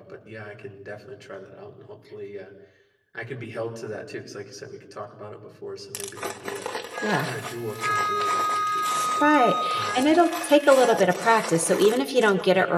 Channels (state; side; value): identical; both; correlation 1.00